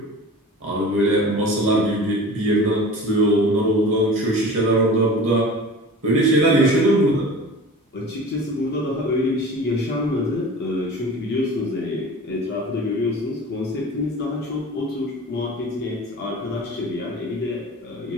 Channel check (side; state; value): both; normal; correlation 0.38